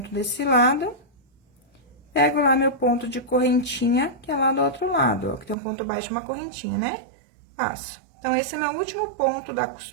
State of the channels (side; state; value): left; drops out; at 5.6 s